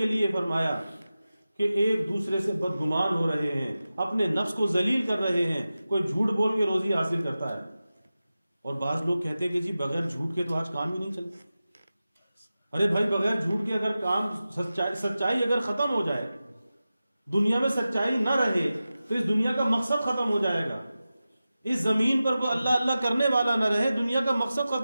لیے فرمایا کہ ایک دوسرے سے بدگمان ہو رہے ہیں, اپنے نفس کو ذلیل کر رہے ہیں. کوئی جھوٹ بول کے روزی حاصل کرتا ہے, اور بعض لوگ کہتے ہیں کہ جی بغیر جھوٹ کے تو آج کام ہی نہیں چلتا. ارے بھائی بغیر جھوٹ کے اگر کام, سچائی اگر ختم ہو جائے, دنیا میں سچائی نہ رہے تو اس دنیا کا مقصد ختم ہو جائے گا. اس زمین پر کوئی اللہ اللہ کرنے والا نہ رہے, دنیا کا مقصد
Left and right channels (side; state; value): both; inverted; correlation -0.94